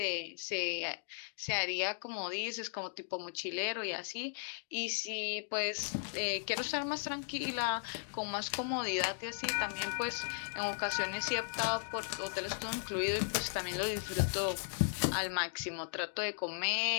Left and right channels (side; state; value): right; silent; digital silence